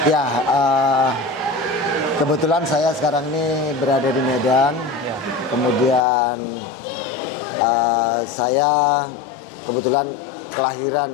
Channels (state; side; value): drops out; right; at 6.1 s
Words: Ya, kebetulan saya sekarang ini berada di Medan. Ya. Kemudian saya kebetulan